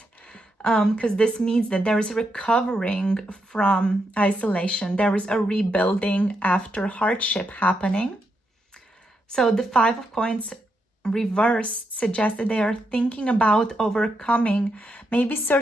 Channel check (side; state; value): both; normal; correlation 0.82